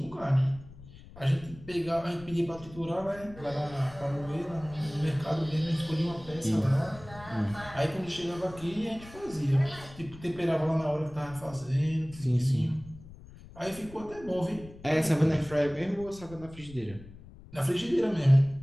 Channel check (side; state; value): left; noise; rumble, 18 dB below the sound